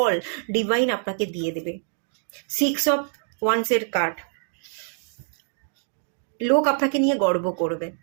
ডিভাইন আপনাকে দিয়ে দেবে। 6 অফ ওয়ান্সের কার্ড, লোক আপনাকে নিয়ে গর্ব করবে,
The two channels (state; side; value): silent; left; 62 dB below the other